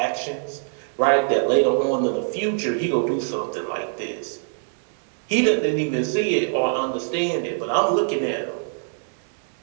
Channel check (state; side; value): silent; left; 63 dB below the other